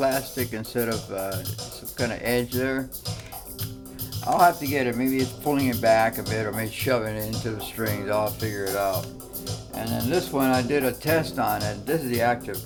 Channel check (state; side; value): identical; both; correlation 1.00